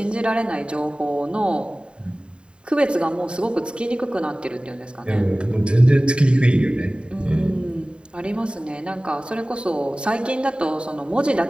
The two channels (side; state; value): left; late; 0.052 ms